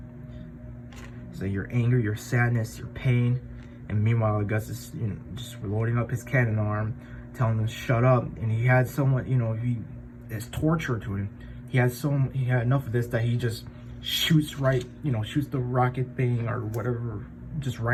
So your anger, your sadness, your pain, and meanwhile Gus is, you know, just loading up his cannon arm, telling him to shut up. And he had someone, you know, it's torture to him. He had enough of this that he just shoots the rocket thing or whatever, just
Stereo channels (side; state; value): both; identical; correlation 1.00